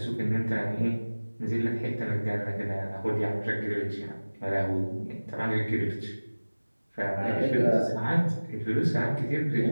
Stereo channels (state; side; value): inverted; both; correlation -1.00